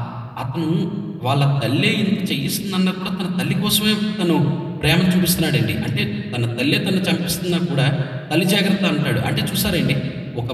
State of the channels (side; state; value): both; identical; correlation 1.00